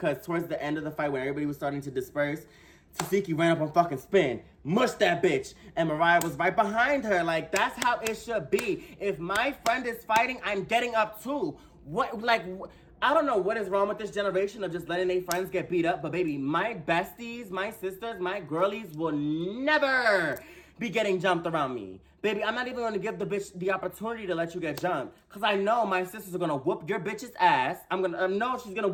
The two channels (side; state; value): both; identical; correlation 1.00